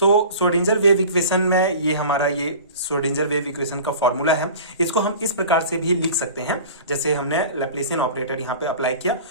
wave equation में ये हमारा ये श्रोडिंगर वेव इक्वेशन का फॉर्मूला है। इसको हम इस प्रकार से भी लिख सकते हैं, जैसे हमने लैप्लेसियन ऑपरेटर यहाँ पे अप्लाई किया।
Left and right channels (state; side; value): inverted; both; correlation -0.39